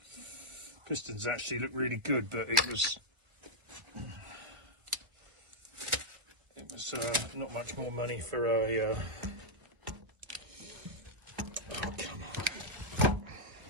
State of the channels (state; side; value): late; left; 1.6 ms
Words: Pistons actually look really good, but it was not much more money for a oh, come on.